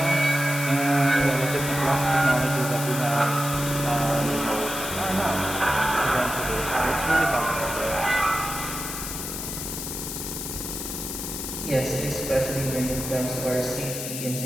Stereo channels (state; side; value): noise; left; hiss, 6 dB below the sound